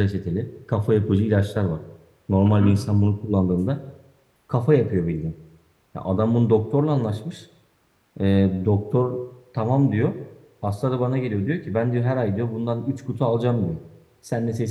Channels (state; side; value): identical; both; correlation 1.00